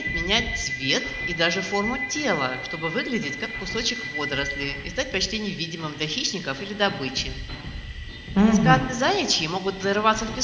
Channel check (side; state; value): both; identical; correlation 1.00